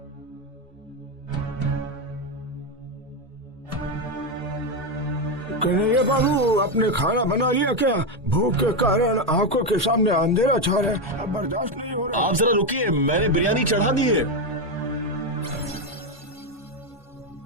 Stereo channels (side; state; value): both; normal; correlation 0.08